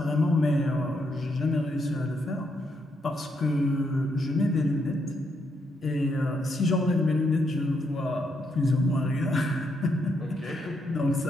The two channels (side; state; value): both; normal; correlation 0.78